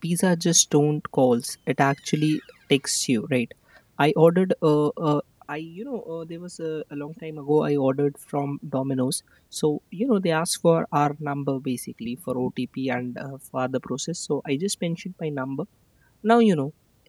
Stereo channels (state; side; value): identical; both; correlation 1.00